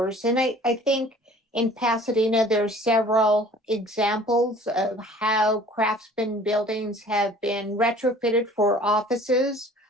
And I think in Pasadena, there's several examples of how craftsman buildings have been retrofitted for offices.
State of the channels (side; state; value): both; normal; correlation 0.49